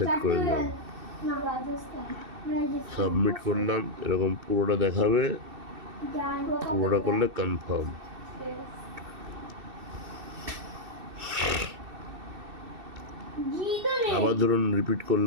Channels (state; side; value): late; left; 2.6 ms